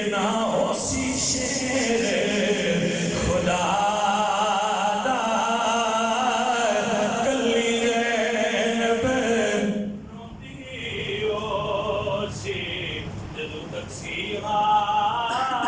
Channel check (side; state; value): both; identical; correlation 1.00